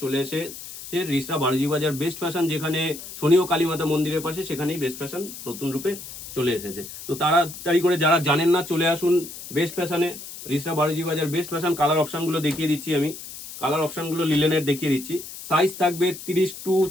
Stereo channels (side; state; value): left; noise; hiss, 12 dB below the sound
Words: চলে এসে রিসরা বারোজি বাজার বেস্ট ফ্যাশন, যেখানে শনি ও কালীমাতা মন্দিরের পাশে, সেখানেই বেস্ট ফ্যাশন নতুন রূপে চলে এসেছে। তো তাড়াতাড়ি করে যারা জানেন না চলে আসুন বেস্ট ফ্যাশনে, রিসরা বারোজি বাজার বেস্ট ফ্যাশন। কালার অপশনগুলো দেখিয়ে দিচ্ছি আমি, কালার অপশনগুলো লিলেনের দেখিয়ে দিচ্ছি। সাইজ থাকবে 30 টু